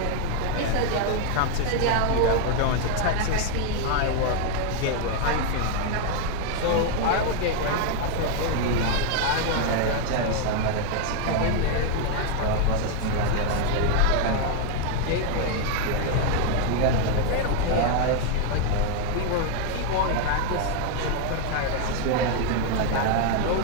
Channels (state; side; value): different; both; correlation 0.00